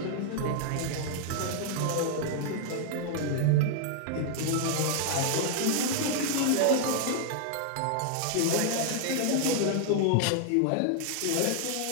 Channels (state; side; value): different; both; correlation 0.00